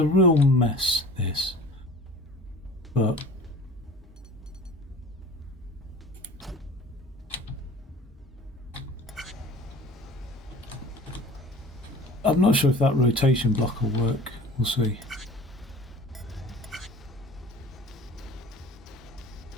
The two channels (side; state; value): both; normal; correlation 0.43